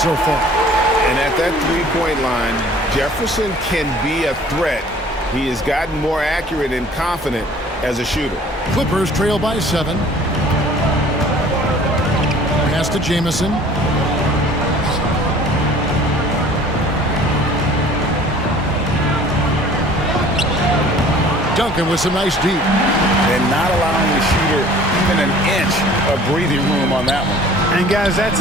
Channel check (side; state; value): both; normal; correlation 0.50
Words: so far. And at that three-point line, Jefferson can be a threat. He has gotten more accurate and confident as a shooter. Clippers trail by 7. Pass to Jameson. Duncan with some nice deep. And not allowing the shooter even an inch of breathing room on that one. And, guys, that's